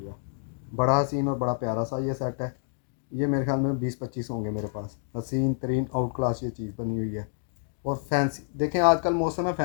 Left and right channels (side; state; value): right; silent; digital silence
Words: है, बड़ा हसीन और बड़ा प्यारा सा ये सेट है। ये मेरे ख्याल में 20-25 होंगे मेरे पास। हसीन तरीन आउट क्लास ये चीज़ बनी हुई है। और फैंसी देखें, आजकल मौसम है